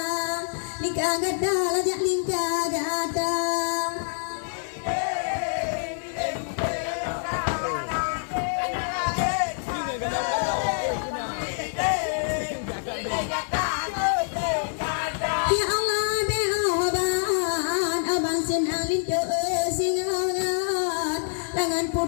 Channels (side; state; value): right; silent; digital silence